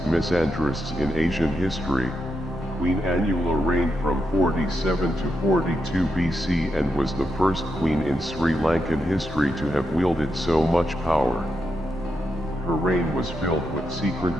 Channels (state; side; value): normal; both; correlation 0.84